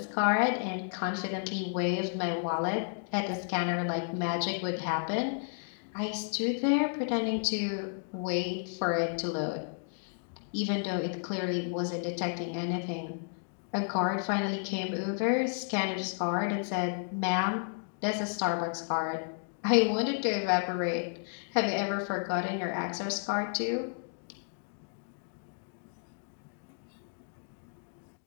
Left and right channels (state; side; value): silent; right; digital silence